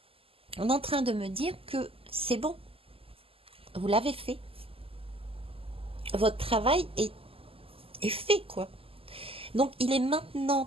On est en train de me dire que c'est bon. Vous l'avez fait. Votre travail est fait, quoi. Donc, il est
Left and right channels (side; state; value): left; late; 0.27 ms